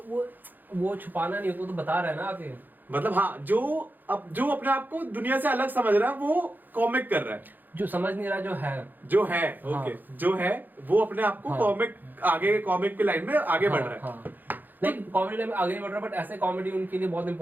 वो छुपाना नहीं होता, वो तो बता रहा है ना आके। मतलब हाँ, जो अपने आप को दुनिया से अलग समझ रहा है वो कॉमिक कर रहा है। जो समझ नहीं रहा जो है ओके, हाँ। जो है वो अपने आप को हाँ। कॉमिक की लाइन में आगे बढ़ रहा है। हाँ। नहीं कॉमेडी लाइन में आगे नहीं बढ़ रहा, बट ऐसे कॉमेडी उनके लिए बहुत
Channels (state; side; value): late; left; 0.087 ms